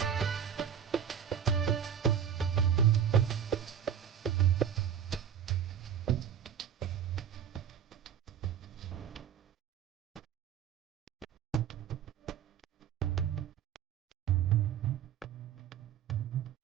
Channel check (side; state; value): left; quieter; 8.7 dB